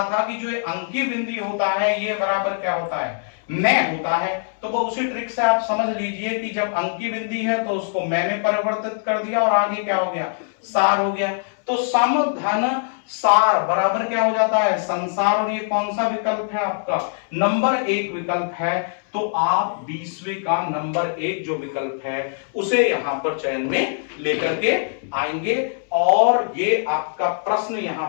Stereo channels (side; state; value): right; silent; 64 dB below the other